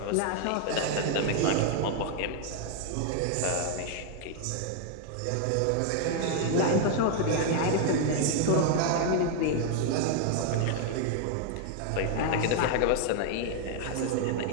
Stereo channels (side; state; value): both; different; correlation 0.00